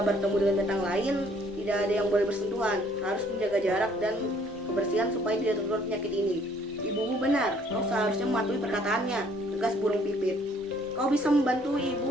bertemu dengan binatang lain, tidak ada yang boleh bersentuhan. Harus menjaga jarak dan kebersihan supaya tidak tertular penyakit ini." "Ibumu benar, kau seharusnya mematuhi perkataannya," tegas burung pipit. "Kau bisa membantu ibu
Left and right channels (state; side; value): normal; both; correlation 0.61